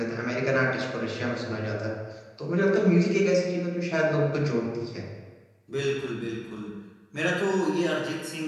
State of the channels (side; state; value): both; identical; correlation 1.00